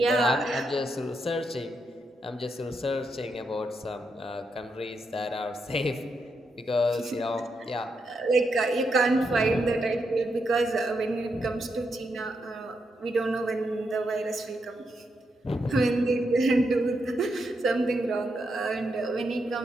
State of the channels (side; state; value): both; normal; correlation 0.82